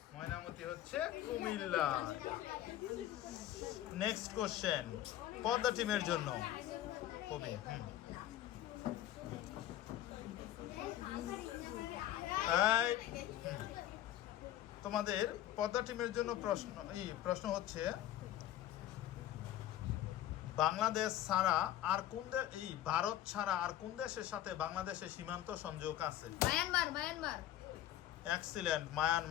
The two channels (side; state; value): right; quieter; 12.7 dB